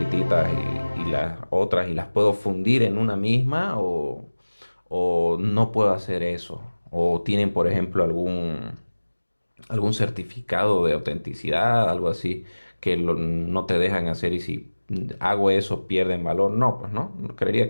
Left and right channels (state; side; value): inverted; both; correlation -1.00